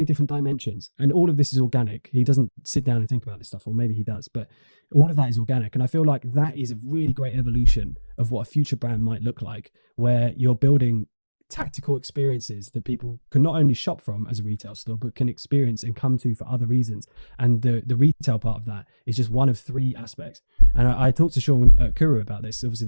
different dimensions, and all of this is organic. He doesn't sit down and think about this stuff, or maybe he does, but all of that is organic. And I feel like that is a really great evolution of what a future brand might look like, where you're building tactical experiences that people can not only shop from as a retail store, but can experience and come to for other reasons. And the retail part of that is just one of three aspects. And I talked to Sean at Kuru about this. Obviously,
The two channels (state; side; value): inverted; both; correlation -1.00